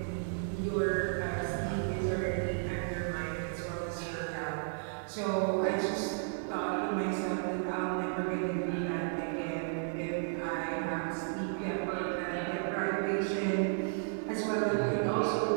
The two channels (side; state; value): left; silent; 55 dB below the other